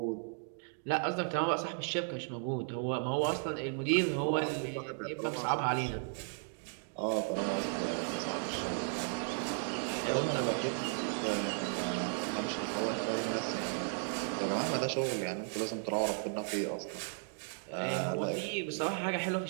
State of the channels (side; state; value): left; silent; 54 dB below the other